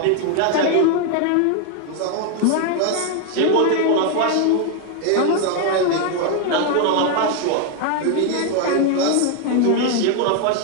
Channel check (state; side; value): different; both; correlation 0.01